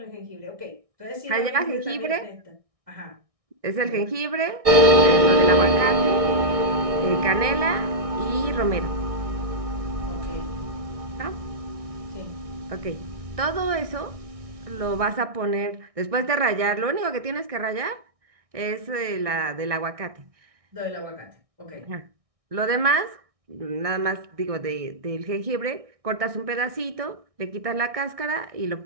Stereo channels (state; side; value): late; left; 1.6 ms